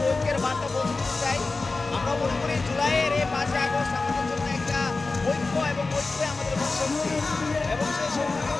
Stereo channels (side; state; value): right; quieter; 3.7 dB